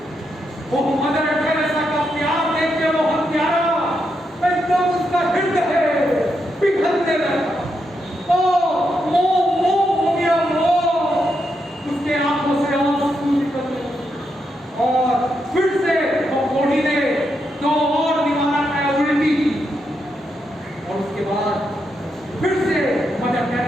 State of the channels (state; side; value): normal; both; correlation 0.82